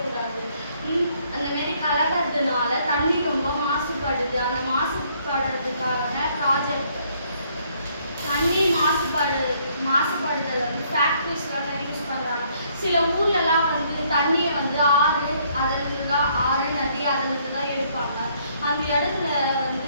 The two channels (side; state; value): both; inverted; correlation -0.67